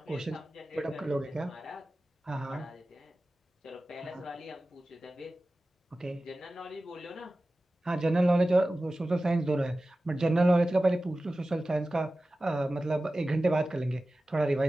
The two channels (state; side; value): normal; both; correlation 0.96